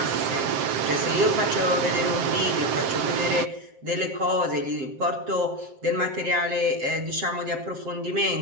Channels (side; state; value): left; late; 7.6 ms